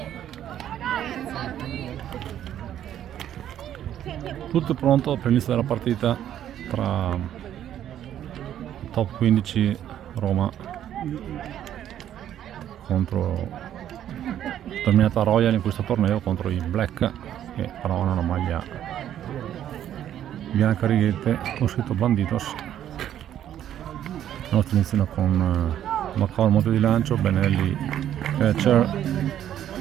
Tutto pronto per l'inizio della partita tra top 15 Roma contro Terminata Royal in questo torneo contro i Black, che però hanno una maglia bianca a righette con scritto Bandidos. I nostri iniziano con Macao al monte di lancio, Benelli catcher,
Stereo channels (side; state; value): left; quieter; 10.9 dB